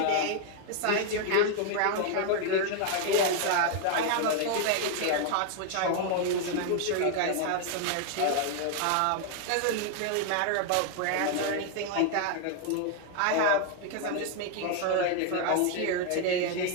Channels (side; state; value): both; different; correlation 0.00